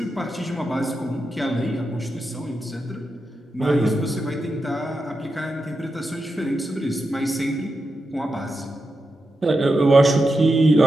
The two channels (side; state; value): both; normal; correlation 0.88